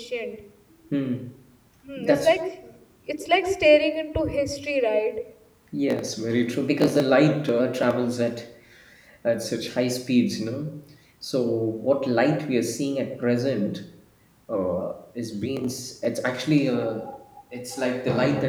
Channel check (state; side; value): identical; both; correlation 1.00